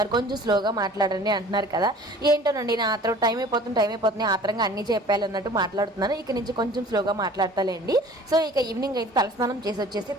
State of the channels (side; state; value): both; normal; correlation 0.47